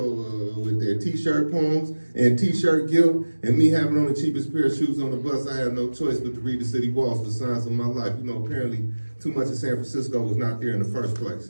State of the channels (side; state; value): both; inverted; correlation -1.00